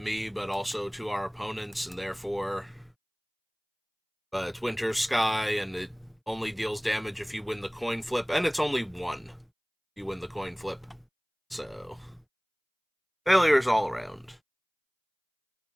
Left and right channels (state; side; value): identical; both; correlation 1.00